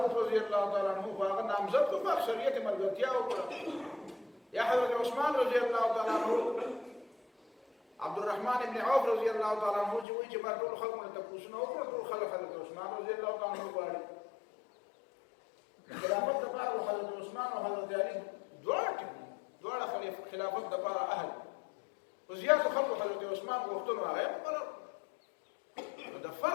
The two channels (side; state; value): right; drops out; at 10.1 s